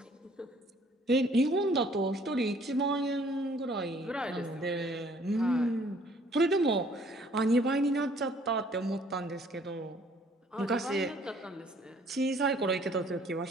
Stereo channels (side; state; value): both; normal; correlation 0.59